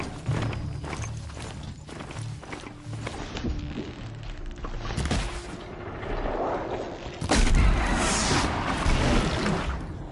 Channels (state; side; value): identical; both; correlation 1.00